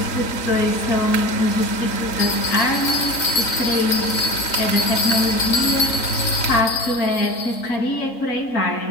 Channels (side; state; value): right; late; 3.8 ms